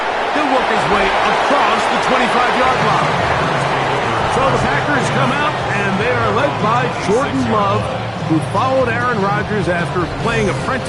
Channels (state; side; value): identical; both; correlation 1.00